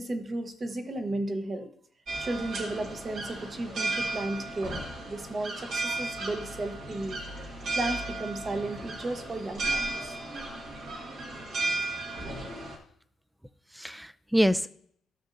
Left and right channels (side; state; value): both; normal; correlation 0.89